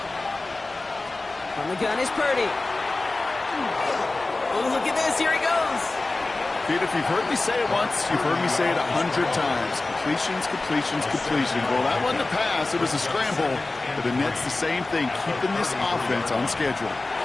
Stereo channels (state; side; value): quieter; right; 3.2 dB